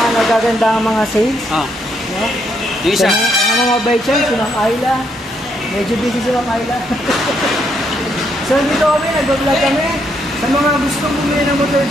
nagagandang mga sales. No? Yung isa. Ang mga baychan, si Ma'am Ayla. Medyo busy si Ma'am Ayla. So dito kami, nag-vlog kami. Sa mga gusto bumili ng motor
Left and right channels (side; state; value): both; normal; correlation 0.75